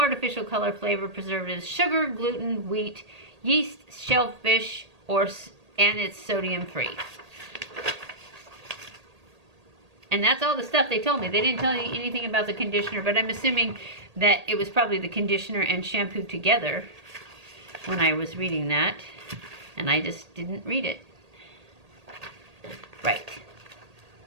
color, flavor, preservatives, sugar, gluten, wheat, yeast, shellfish, and it's sodium free. And that's all the stuff they told me. They didn't tell me anything about the conditioner, but I'm assuming that it was probably the conditioner and shampoo together when I was reading that. And I just didn't read it. Right.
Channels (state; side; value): late; left; 1.8 ms